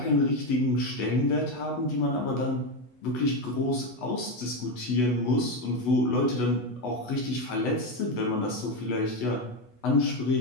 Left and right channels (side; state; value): right; late; 8.1 ms